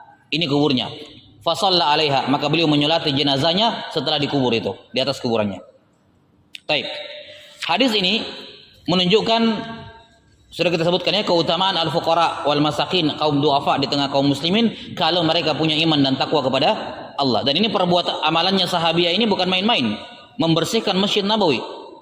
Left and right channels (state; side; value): identical; both; correlation 1.00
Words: ini kuburnya. Fasalla 'alaiha, maka beliau menyolati jenazahnya setelah dikubur itu, di atas kuburannya. Baik. Hadis ini menunjukkan, sudah kita sebutkan ya, keutamaan al-fuqara wal masakin, kaum duafa di tengah kaum muslimin, kalau mereka punya iman dan takwa kepada Allah. Dan ini perbuatan amalannya sahabiah ini bukan main-main, membersihkan Masjid Nabawi.